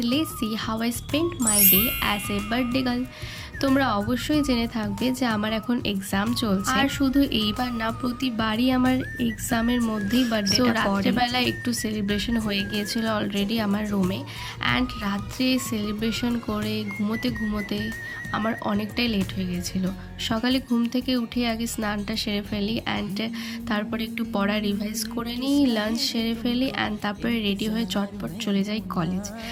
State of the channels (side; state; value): both; identical; correlation 1.00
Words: let's see how I spent my day as a birthday girl. তোমরা অবশ্যই জেনে থাকবে যে আমার এখন এক্সাম চলছে আর শুধু এইবার না প্রতিবারই আমার এক্সামের মধ্যেই বার্থডেটা রাত্রেবেলা একটু সেলিব্রেশন হয়ে গিয়েছিল অলরেডি আমার রুমে অ্যান্ড রাত্রে সেলিব্রেশন করে ঘুমোতে আমার অনেকটাই লেট হয়ে গিয়েছিল। সকালে ঘুম থেকে উঠে আগে স্নানটা সেরে ফেলি অ্যান্ড তারপরে একটু পড়া রিভাইজ করে নিই, লাঞ্চ সেরে ফেলি অ্যান্ড তারপরে রেডি হয়ে চটপট চলে যাই কলেজ।